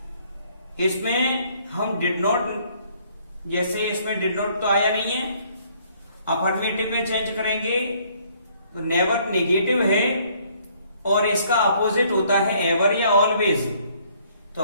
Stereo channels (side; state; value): both; inverted; correlation -0.63